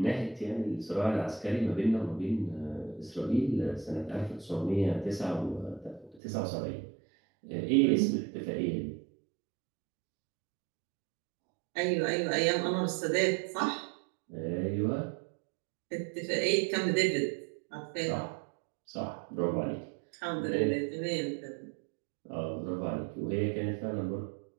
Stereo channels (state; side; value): drops out; left; at 6.2 s